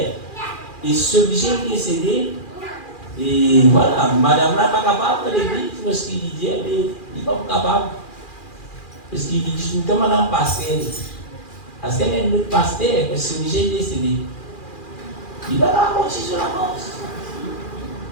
Et ce riche qui est décédé, et voilà, madame là n'est pas capable de l'église, parce qu'il dit, il n'est pas capable. Parce qu'il dit, tout le temps, madame pasteur. Parce qu'elle est notre pasteur, parce que ce riche est décédé. Il va raconter sur la mort.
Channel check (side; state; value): right; late; 2.4 ms